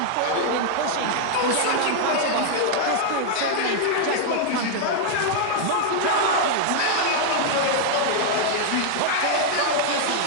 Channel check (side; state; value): both; different; correlation 0.00